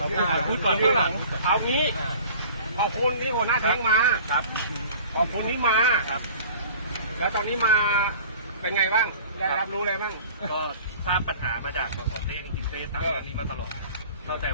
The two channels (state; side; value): inverted; both; correlation -0.45